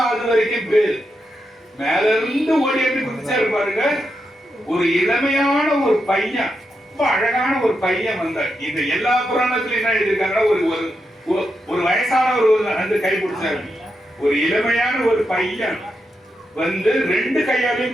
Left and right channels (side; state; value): both; normal; correlation 0.85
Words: அது வரைக்கும் பேரு. மேல இருந்து ஓடி எப்படி குதிச்சாரு பாருங்க. ஒரு இளமையான ஒரு பையன், ரொம்ப அழகான ஒரு பையன் வந்தார். இந்த எல்லா புராணத்திலும் என்ன எழுதியிருக்காங்கன்னா, ஒரு வயசானவர் வந்து கை பிடிச்சாரு. ஒரு இளமையான ஒரு பையன் வந்து 2